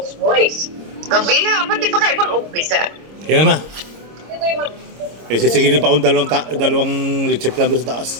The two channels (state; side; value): late; left; 26 ms